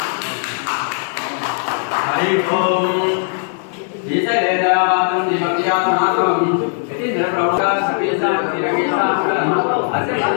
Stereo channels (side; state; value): right; silent; 63 dB below the other